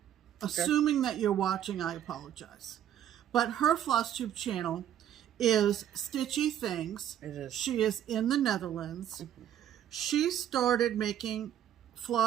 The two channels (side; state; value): left; quieter; 10.6 dB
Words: assuming that you're watching, I apologize. But her FlossTube channel is Stitchy Things. It is. She is in the Netherlands. Mm-hmm. She started making